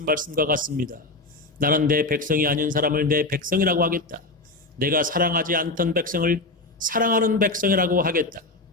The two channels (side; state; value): right; quieter; 3.1 dB